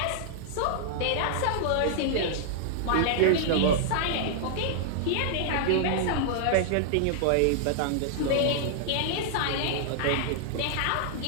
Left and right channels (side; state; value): both; different; correlation -0.01